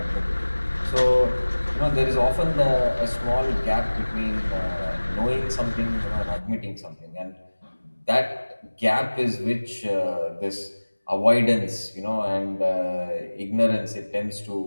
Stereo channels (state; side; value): inverted; both; correlation -1.00